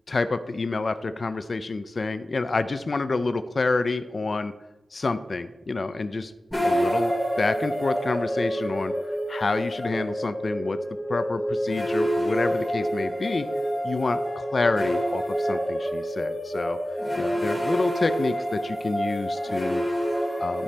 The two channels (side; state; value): both; normal; correlation 0.96